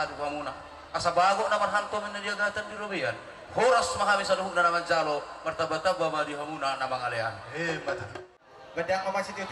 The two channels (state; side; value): identical; both; correlation 1.00